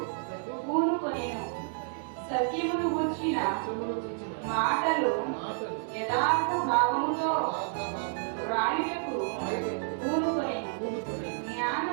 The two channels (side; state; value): left; silent; digital silence